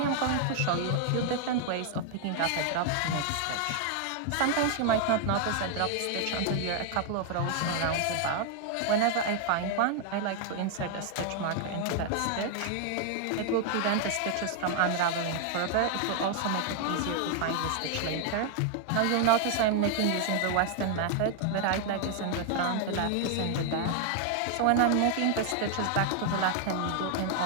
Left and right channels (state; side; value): different; both; correlation 0.00